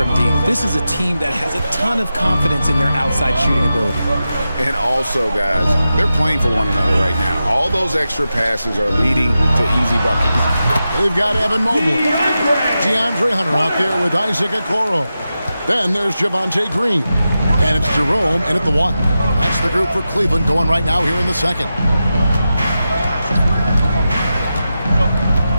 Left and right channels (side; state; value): both; inverted; correlation -0.91